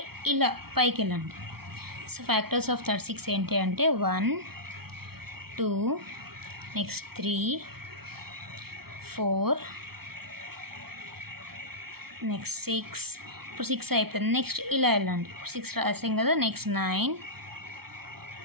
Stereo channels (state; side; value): late; left; 0.95 ms